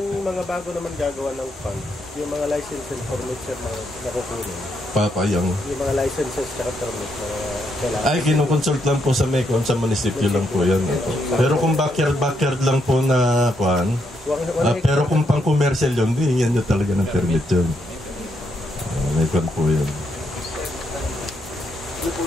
mga bago naman gagawa ng fund, yung mga license and permit sir na nakukunin. Papayang. Yung mga licenses at permit na kailangan. Ay, kinukonsult lang po sa MECON, sa munisipyo lang po yan. Pero kung backyard lang po na kuhan, pero kung pang commercial yun, hingyan nyo talaga ng permit yun. MECON po yun. Ano po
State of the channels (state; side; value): normal; both; correlation 0.78